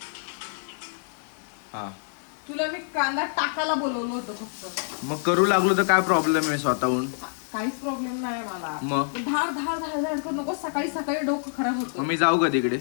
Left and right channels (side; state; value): right; silent; 60 dB below the other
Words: हा तुला मी कांदा टाकायला बोलवलं होतं फक्त. मग करू लागलो तर काय प्रॉब्लेम आहे स्वतःहून? काहीच प्रॉब्लेम नाही मला. मग धार धार धार धार करू नको. सकाळी सकाळी डोकं खराब होतं. मग मी जाऊ का तिकडे?